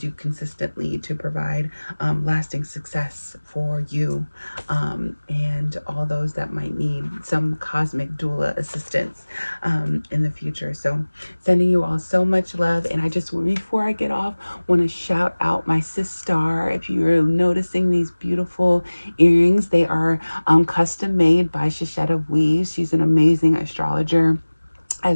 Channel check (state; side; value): inverted; both; correlation -1.00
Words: consistently to provide lasting success for you and all those that might need some cosmic doula assistance in the future. So sending you all so much love. And I just, before I get off, want to shout out my sis Star. If you're noticing these beautiful earrings, they are custom made by Shishetta Weaves. She's an amazing astrologer